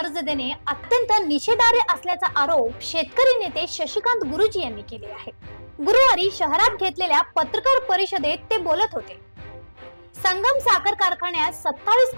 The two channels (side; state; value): both; inverted; correlation -1.00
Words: देणे अत्यंत निषेधार्ह असल्याचा आरोप शेतकरी नेते शशिकांत गुरुजी यांनी केले आहे. गुरुवारी शहरात घेतलेल्या पत्रकार परिषदेत ते बोलत होते. संगम साखर कारखान्यात 27